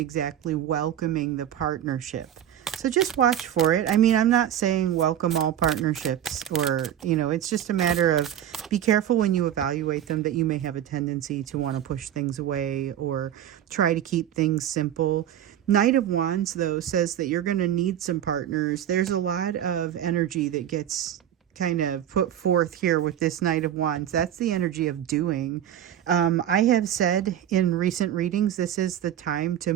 welcoming the partnership. So just watch for it. I mean, I'm not saying welcome all partnerships or, it's just a matter of be careful when you evaluate them that you may have a tendency to want to push things away or try to keep things simple. Knight of Wands, though, says that you're going to need some partners. There's a lot of energy that gets kind of put forth here with this Knight of Wands. That's the energy of doing. I have said in recent readings, this is the time to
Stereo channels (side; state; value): left; quieter; 10.8 dB